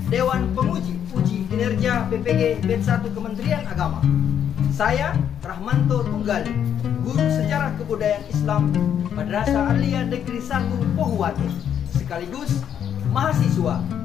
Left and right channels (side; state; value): right; quieter; 9.0 dB